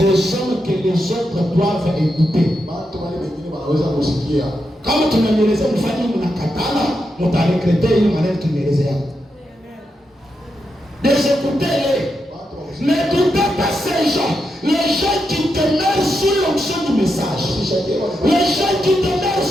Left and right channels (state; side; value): normal; both; correlation 0.85